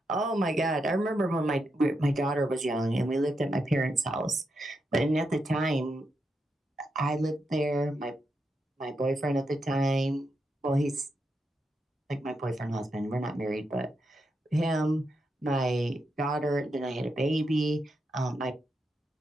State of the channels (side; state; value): both; normal; correlation 0.84